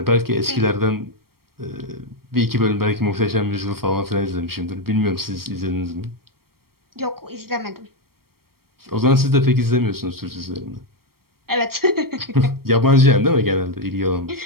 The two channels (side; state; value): left; late; 0.94 ms